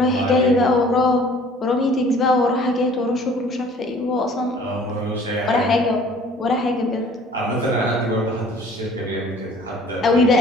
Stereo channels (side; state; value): both; normal; correlation 0.52